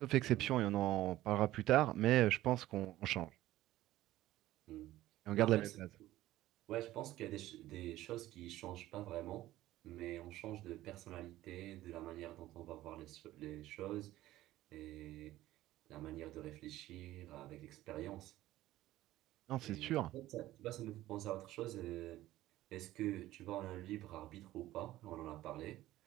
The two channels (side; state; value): left; quieter; 15.5 dB